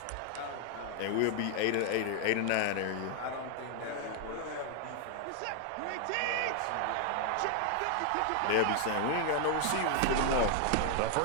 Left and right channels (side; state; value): both; different; correlation 0.00